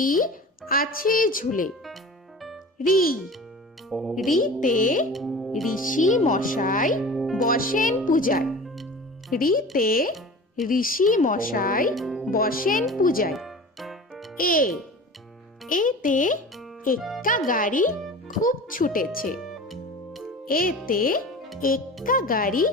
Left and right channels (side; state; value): both; normal; correlation 0.37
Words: আছে ঝুলে। রি রিতে ঋষি মশাই বসেন পূজায়। রিতে ঋষি মশাই বসেন পূজায়। এ এতে এক্কা গাড়ি খুব ছুটেছে। এতে এক্কা গাড়ি